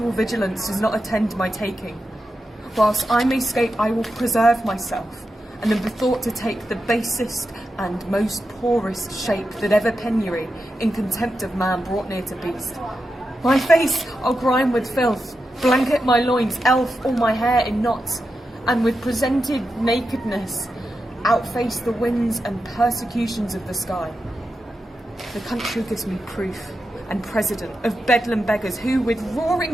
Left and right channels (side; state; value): both; normal; correlation 0.89